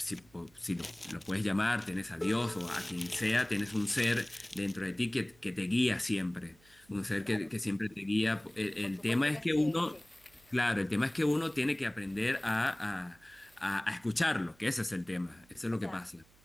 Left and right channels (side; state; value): right; noise; hum, 29 dB below the sound